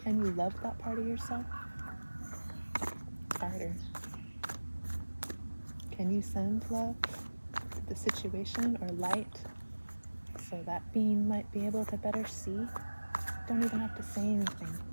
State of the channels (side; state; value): both; inverted; correlation -1.00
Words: Can you love that part of yourself? Harder. Can you send love to the situation or light so that being might be able to better see? Don't even have to say anything.